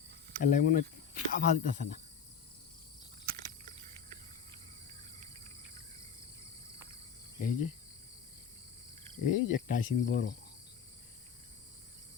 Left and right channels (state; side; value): quieter; right; 7.0 dB